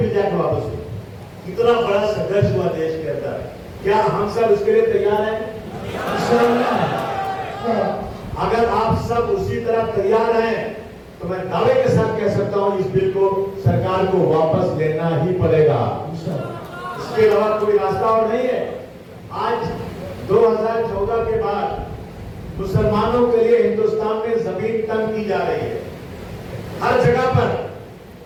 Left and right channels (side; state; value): both; identical; correlation 1.00